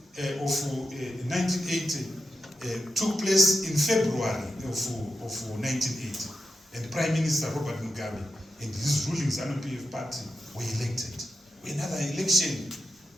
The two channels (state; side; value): normal; both; correlation 0.88